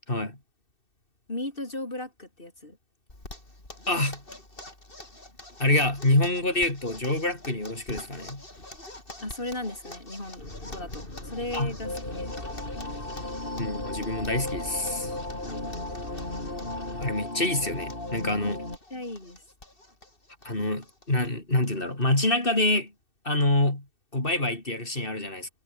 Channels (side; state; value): right; late; 2.6 ms